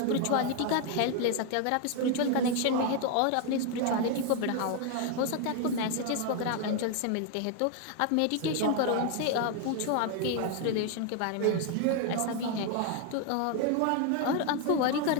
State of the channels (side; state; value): both; different; correlation 0.01